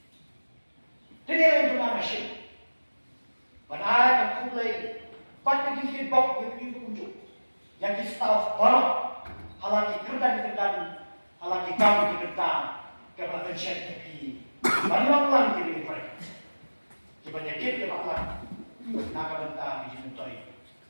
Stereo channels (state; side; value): inverted; both; correlation -1.00